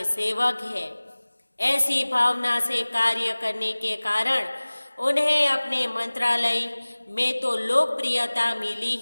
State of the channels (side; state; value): both; inverted; correlation -1.00